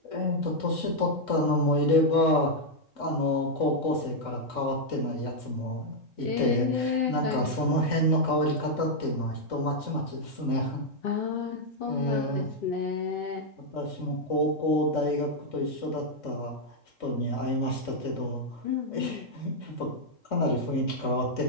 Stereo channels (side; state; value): right; late; 3.7 ms